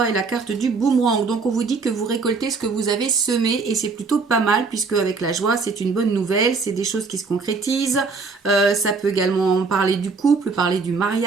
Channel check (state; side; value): quieter; left; 4.5 dB